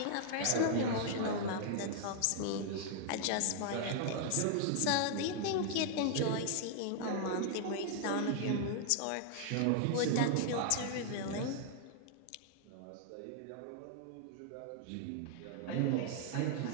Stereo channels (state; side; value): different; both; correlation -0.01